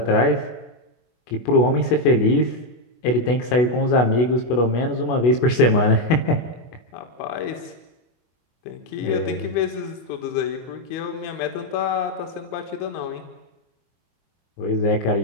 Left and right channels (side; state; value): right; late; 24 ms